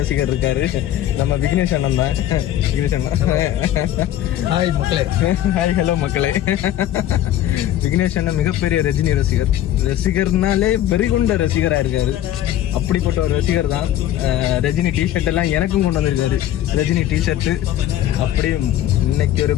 இருக்காரு, நம்ம விக்னேஷ் அண்ணன் தான். விக்னேஷ் அண்ணன் ஹாய் மக்களே. ஹாய் ஹலோ மக்களே. விக்னேஷ் அண்ணன் மிகப்பெரிய ரஜினி ரசிகர்னாலே வெறிகுண்ட ரசிகராக இருக்காரு. அப்படிப்பட்ட ஒரு ரசிகர் தான். ரஜினி டிஷர்ட் எல்லாம் எனக்கும் கொண்டு வந்திருக்காரு, ரஜினி டிஷர்ட்டு. அப்படியே இன்னைக்கு ஒரு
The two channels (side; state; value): right; quieter; 12.4 dB